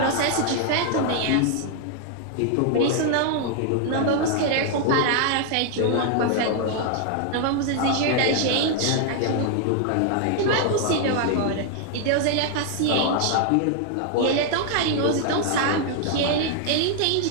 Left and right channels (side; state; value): both; different; correlation 0.00